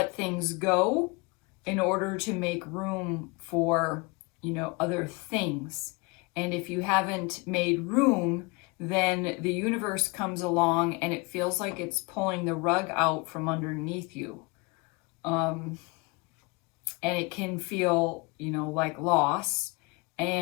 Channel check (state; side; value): quieter; right; 27.2 dB